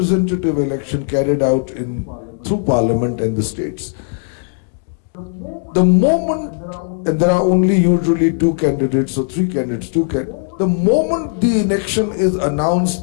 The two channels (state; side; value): silent; right; digital silence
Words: election carried out through Parliament and the states, the moment, and there are only usually 2 candidates or 3 candidates, the moment the election is